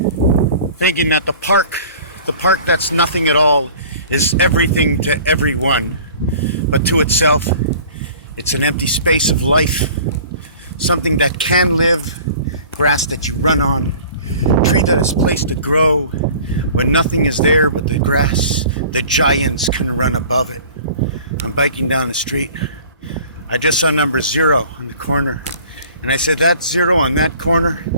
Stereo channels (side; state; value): both; inverted; correlation -0.47